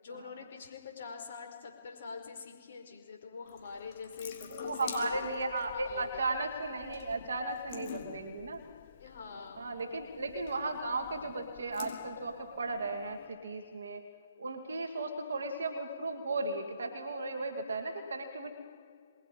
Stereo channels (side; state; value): both; inverted; correlation -0.74